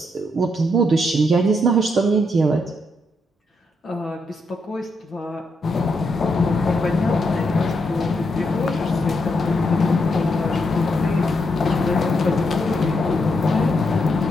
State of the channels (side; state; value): both; normal; correlation 0.79